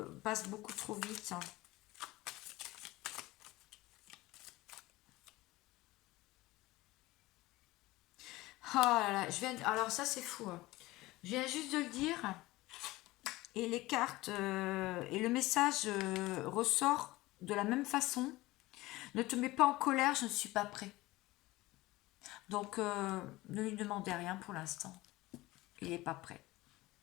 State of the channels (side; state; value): right; quieter; 19.3 dB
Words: beaucoup trop vite. Oh là là, alors ça c'est fou, hein. Je viens juste de le dire, et les cartes et le message ressort de la même façon. Ne te mets pas en colère, je ne suis pas prêt. Donc ne lui demandez rien pour l'instant. Il n'est pas prêt.